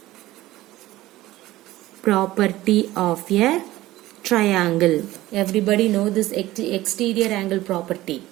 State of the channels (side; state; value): left; quieter; 16.6 dB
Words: property of a triangle. Everybody know this exterior angle property.